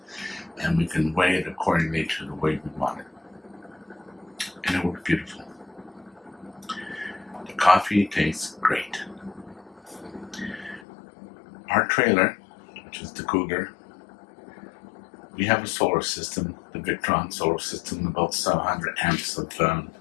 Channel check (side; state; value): right; drops out; at 10.9 s